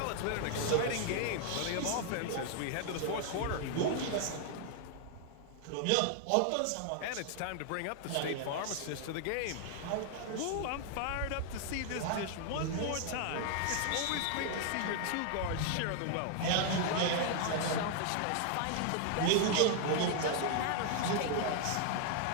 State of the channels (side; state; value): both; different; correlation 0.00